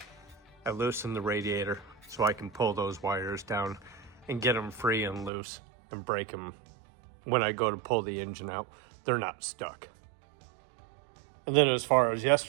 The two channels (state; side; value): drops out; left; at 5.3 s